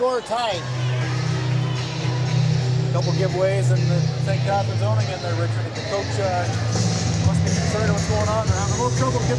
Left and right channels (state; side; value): identical; both; correlation 1.00